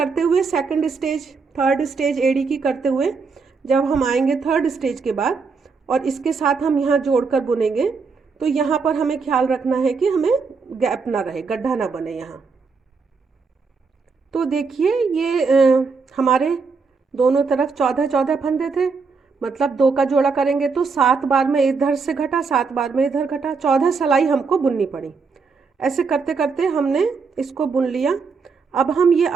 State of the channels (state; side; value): quieter; left; 4.9 dB